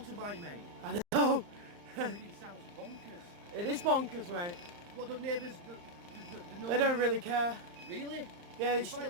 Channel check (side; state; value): left; late; 34 ms